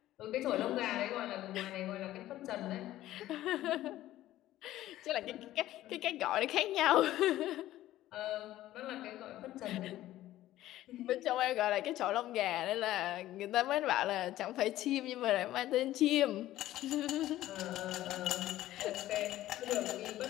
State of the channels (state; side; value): quieter; right; 14.5 dB